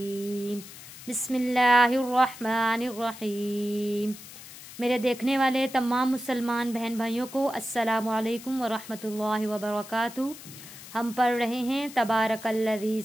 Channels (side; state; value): left; noise; hiss, 15 dB below the sound